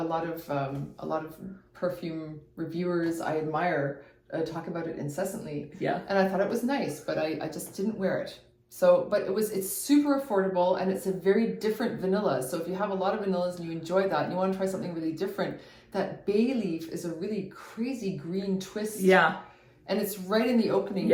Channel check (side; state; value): both; identical; correlation 1.00